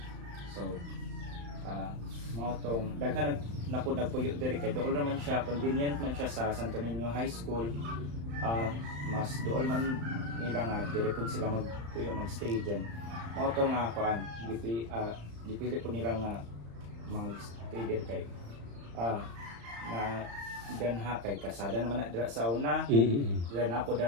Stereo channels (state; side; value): late; left; 35 ms